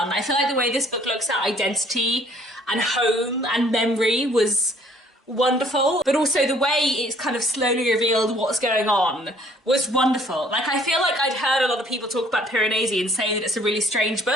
I feel like the way this book looks at identity and home and memory was wonderful, but also the way it's kind of slowly revealed what's going on was wonderful. Like, I feel like I'd heard a lot of people talk about Piranesi and say that it's a really strange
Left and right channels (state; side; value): normal; both; correlation 0.59